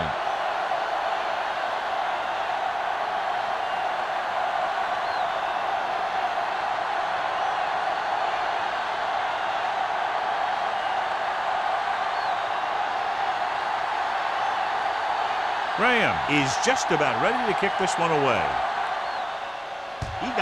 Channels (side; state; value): both; identical; correlation 1.00